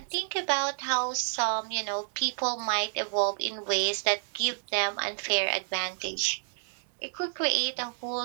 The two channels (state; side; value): silent; left; 58 dB below the other